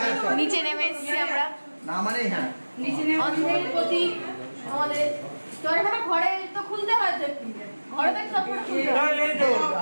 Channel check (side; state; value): both; inverted; correlation -1.00